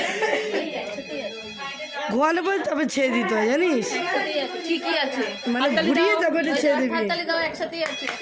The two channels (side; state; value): both; identical; correlation 1.00